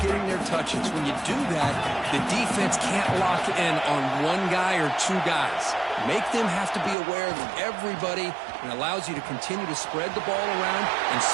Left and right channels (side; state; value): left; drops out; at 7.0 s